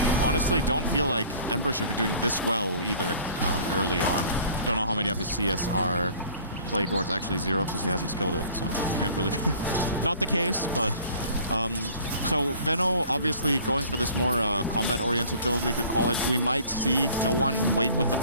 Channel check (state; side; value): inverted; both; correlation -0.49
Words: Honestly, don't feel like Ember should be doing this well either early on. Don't know how many of his CS are Plague Ward's actually 0 because he hasn't skilled it, so can't really be not the case, but so Veno obviously going for this more combat-oriented build, we could call it. We might see no one wait with the